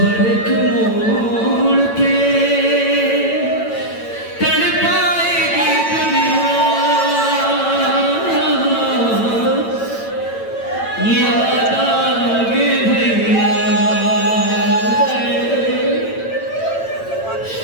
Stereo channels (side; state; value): right; late; 9.0 ms